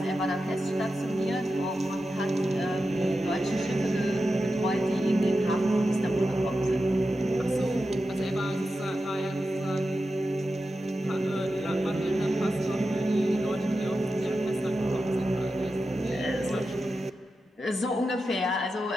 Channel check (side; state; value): both; normal; correlation 0.91